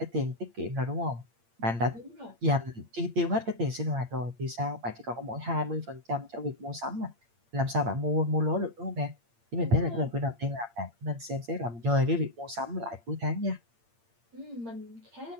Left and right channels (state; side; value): late; left; 8.7 ms